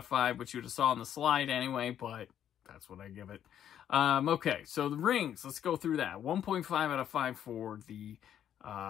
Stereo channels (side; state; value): right; quieter; 10.0 dB